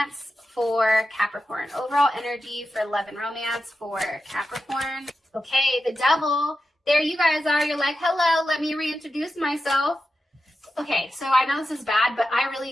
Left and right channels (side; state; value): both; normal; correlation 0.90